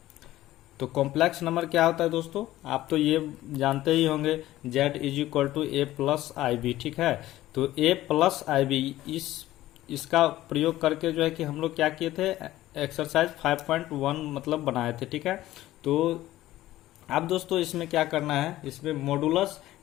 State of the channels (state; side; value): quieter; right; 15.3 dB